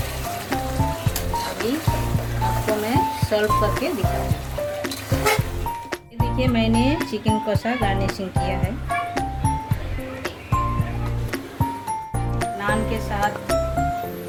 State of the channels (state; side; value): identical; both; correlation 1.00